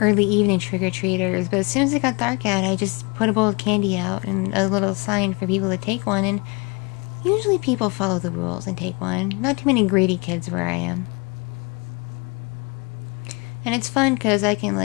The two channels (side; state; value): right; quieter; 28.3 dB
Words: early evening trick-or-treaters. But as soon as it got dark out, I just put a bowl of candy out and a little sign for people to take one. And usually people follow the rules and take one. Not too many greedy kids where I am. And it's fun because I can,